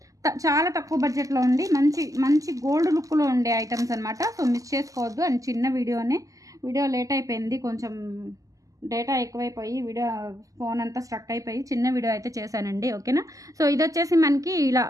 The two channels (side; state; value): left; late; 0.16 ms